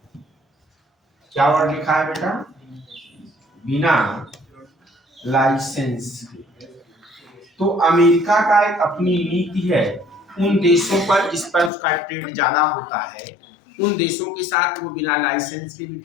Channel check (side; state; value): right; drops out; at 11.7 s